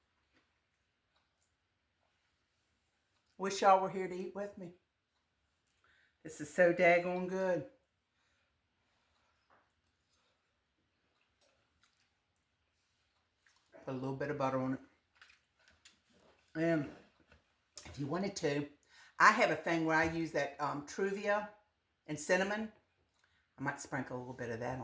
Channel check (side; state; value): both; identical; correlation 1.00